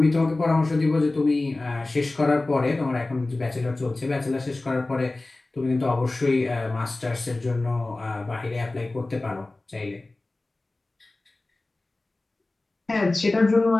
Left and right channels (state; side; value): quieter; right; 3.0 dB